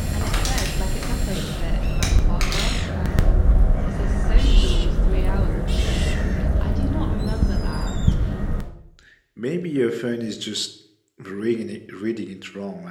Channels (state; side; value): identical; both; correlation 1.00